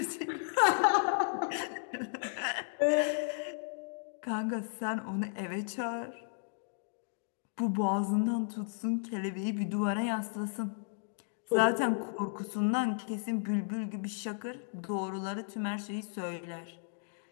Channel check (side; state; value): right; silent; digital silence